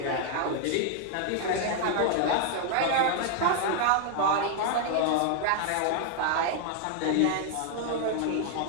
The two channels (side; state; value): both; different; correlation 0.00